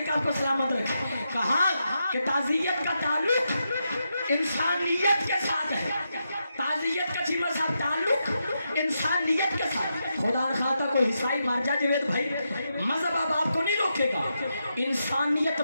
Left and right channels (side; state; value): both; inverted; correlation -0.85